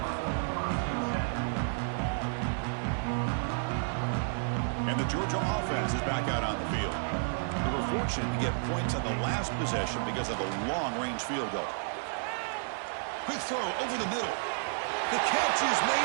And the Georgia offense is back out on the field. They were fortunate to get points on the last possession because of a long-range field goal. Quick throw over the middle. The catch is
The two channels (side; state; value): left; silent; digital silence